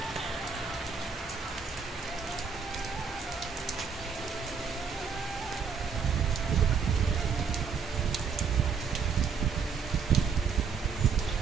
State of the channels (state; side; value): quieter; left; 6.0 dB